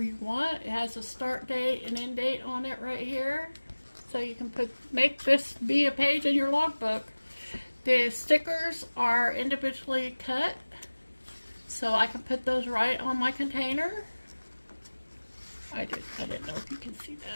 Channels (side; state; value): both; inverted; correlation -1.00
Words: you want. It has a start date and end date on it right here. So you can make this be a page in your logbook. The stickers are individually cut, so I can put those right on my container. I didn't know if you can see